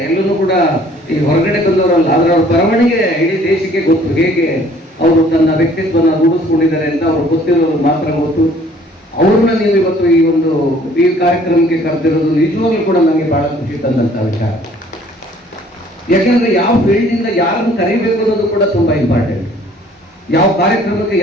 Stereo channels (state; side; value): normal; both; correlation 0.57